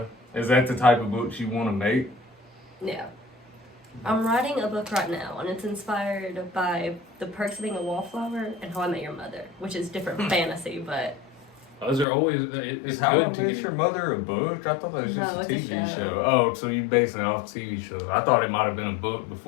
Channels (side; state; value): right; drops out; at 12.1 s